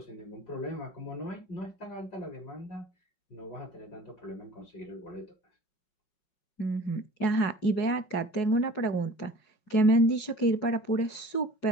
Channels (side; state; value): right; late; 5.4 ms